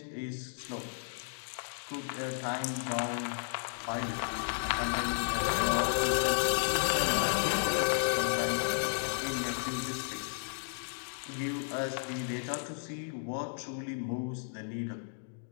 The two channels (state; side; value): silent; right; digital silence